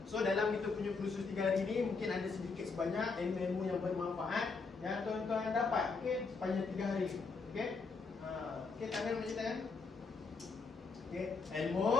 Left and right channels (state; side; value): quieter; right; 4.4 dB